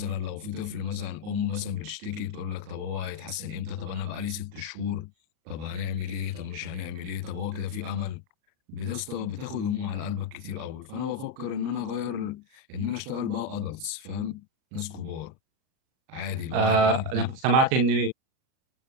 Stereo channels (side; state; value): left; late; 38 ms